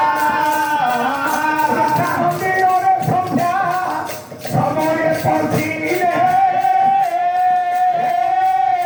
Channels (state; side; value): identical; both; correlation 1.00